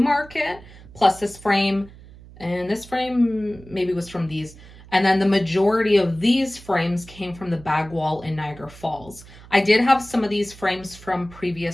plus this frame, and this frame maybe was from these. And then the majority of these frames came from the bag wall in Niagara Falls. I did have some of these frames from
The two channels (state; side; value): noise; right; hum, 20 dB below the sound